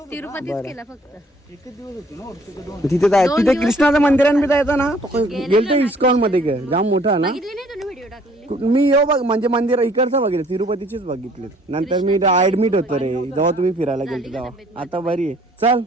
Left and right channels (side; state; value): both; normal; correlation 0.59